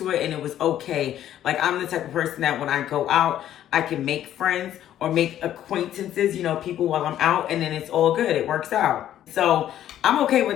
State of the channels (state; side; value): quieter; right; 11.6 dB